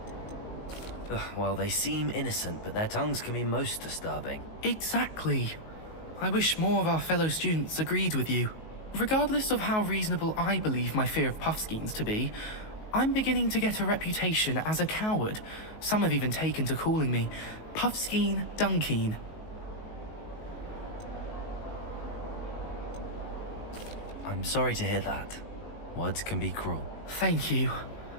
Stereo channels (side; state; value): right; late; 19 ms